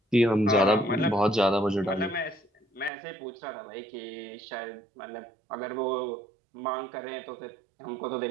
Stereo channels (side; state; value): left; drops out; at 2.9 s